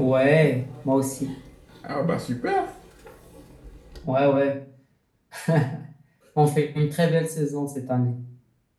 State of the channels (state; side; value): identical; both; correlation 1.00